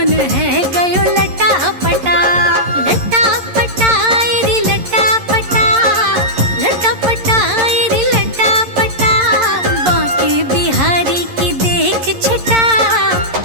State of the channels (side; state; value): left; late; 11 ms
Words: है गयो लटा पटा। लटा पटा रे लटा पटा, लटा पटा रे